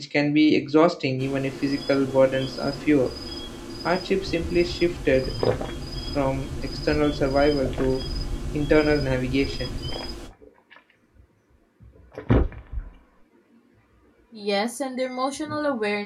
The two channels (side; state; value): both; identical; correlation 1.00